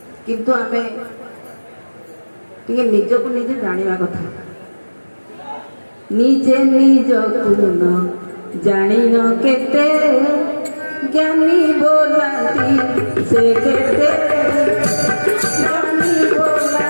କିନ୍ତୁ ଆମେ ଟିକେ ନିଜକୁ ନିଜେ ଜାଣିବା କଥା। ନିଜେ ନିଜକୁ ନ ଜାଣିନ କେତେ, ଜ୍ଞାନୀ ବୋଲାନ୍ତି ସେ କେତେ, ଜ୍ଞାନୀ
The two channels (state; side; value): inverted; both; correlation -1.00